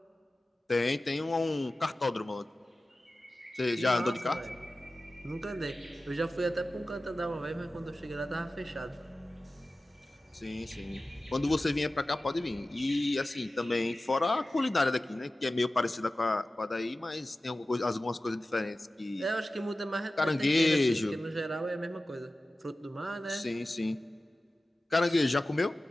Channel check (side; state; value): both; normal; correlation 0.95